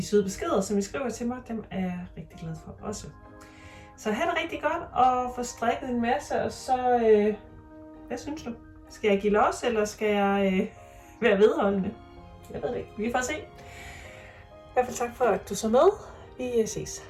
søde beskeder, som I skriver til mig. Dem er jeg rigtig glad for også. Så have det rigtig godt, og få strikket en masse, og så, hvad synes du? Skal jeg give los, eller skal jeg være vedholdende? Jeg ved det ikke. Vi får se. I hvert fald tak for, at du så med. Vi ses.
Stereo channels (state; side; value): identical; both; correlation 1.00